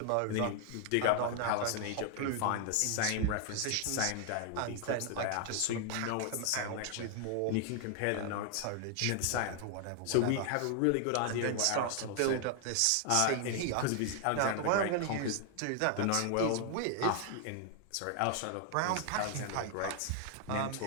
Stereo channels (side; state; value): both; different; correlation 0.00